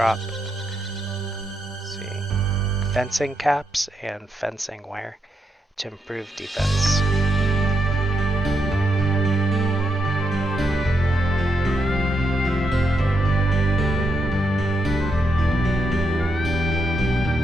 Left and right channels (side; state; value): both; normal; correlation 0.81